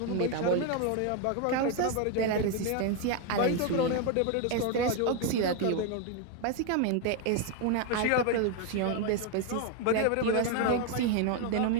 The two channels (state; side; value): different; both; correlation 0.01